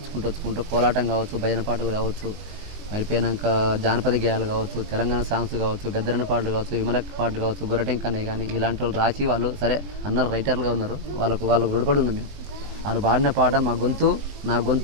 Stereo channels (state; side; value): late; left; 20 ms